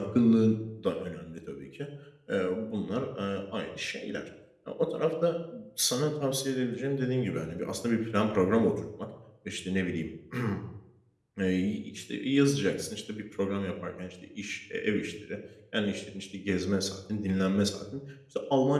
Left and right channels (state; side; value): identical; both; correlation 1.00